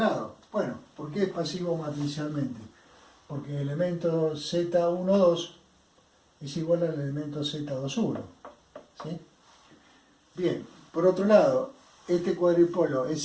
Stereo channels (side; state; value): both; identical; correlation 1.00